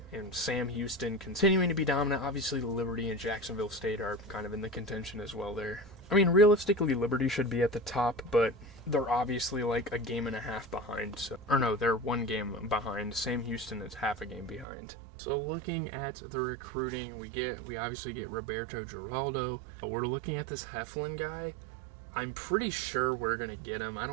and Sam Houston continuing to be dominant. Obviously, Liberty and Jacksonville State are kind of in the contention as well there. I mean, realistically, Liberty should be at the top, but they're obviously like a game and a half behind. Or no, they're 1 game behind. Sam Houston is half a game behind. So looking at the recruiting, we obviously get Roberto Giraldo. We're looking at this Heflin guy. I'm pretty sure we're going to get him. I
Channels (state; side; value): drops out; left; at 14.7 s